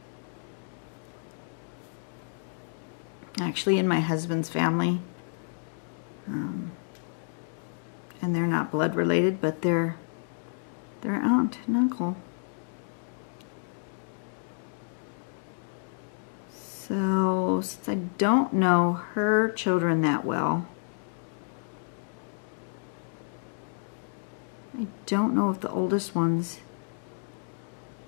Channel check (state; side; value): silent; right; digital silence